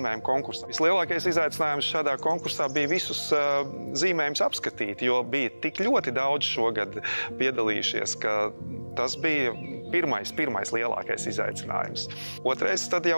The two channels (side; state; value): both; inverted; correlation -1.00